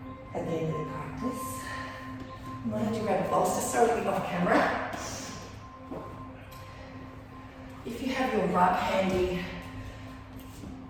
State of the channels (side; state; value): both; identical; correlation 1.00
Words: at the end of the practice. I might have to grab a bolster, sorry to be off camera. If you have your rug handy,